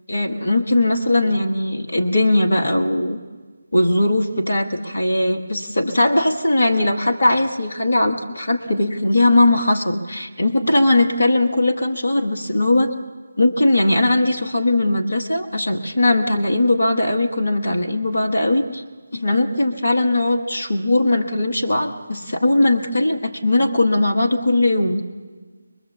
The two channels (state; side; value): inverted; both; correlation -0.92